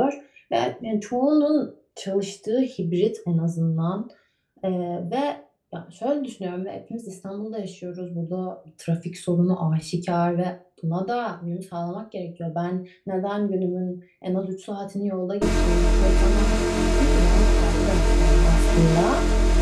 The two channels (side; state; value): both; identical; correlation 1.00